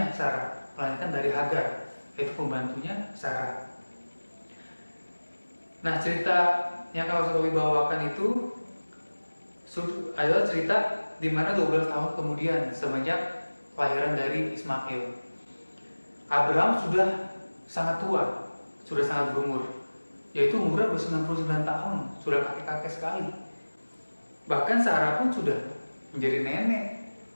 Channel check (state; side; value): inverted; both; correlation -1.00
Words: Sarah, melainkan dari Hagar, yaitu pembantunya Sarah. Nah, cerita yang Lause bawakan itu adalah cerita di mana 12 tahun kemudian semenjak kelahiran dari Ismail, Abraham sudah sangat tua, sudah sangat berumur, yaitu umurnya sudah 99 tahun, sudah kakek-kakek sekali. Bahkan Sarah pun sudah menjadi nenek,